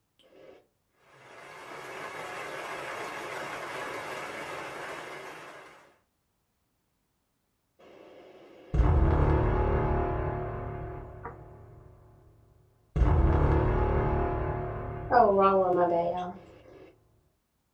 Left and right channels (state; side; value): identical; both; correlation 1.00